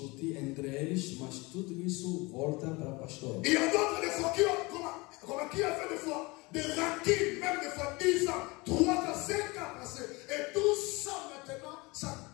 entre eles, mas tudo isso volta para o pastor. Il y a d'autres des fois qui ont fait des fois des rancunes, même des fois 10 ans, 3 ans, 5 ans passés. Et tout ça maintenant, ça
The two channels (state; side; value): quieter; right; 24.7 dB